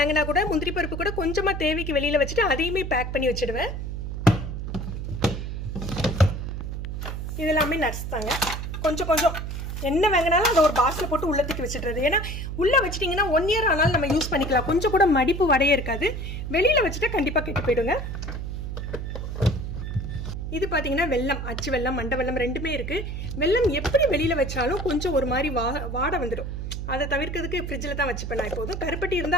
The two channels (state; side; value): noise; right; hum, 5 dB below the sound